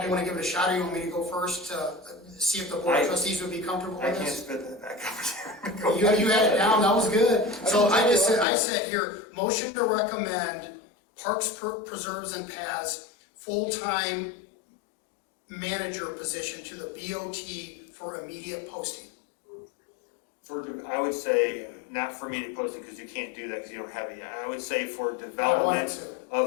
you want to give it a shot, or you want me to go first to see if the Board of Trustees would be comfortable with I can't this? spit that back You had it down, that was good. So I said here, motion to recommend Parks, Preserves, and Paths full-time manager position to the BOT for immediate posting. I would say not for immediate posting, because you can't do that because you don't have it yet. I would say for development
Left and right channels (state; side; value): drops out; right; at 8.5 s